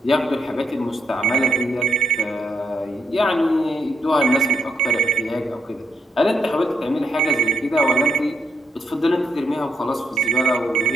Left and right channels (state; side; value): normal; both; correlation 0.79